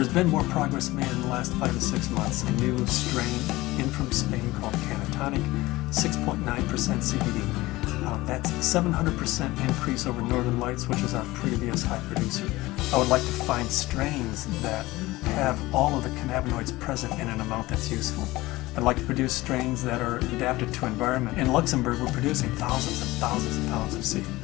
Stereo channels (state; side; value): quieter; right; 19.2 dB